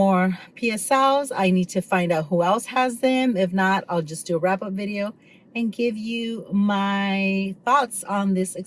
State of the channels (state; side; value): identical; both; correlation 1.00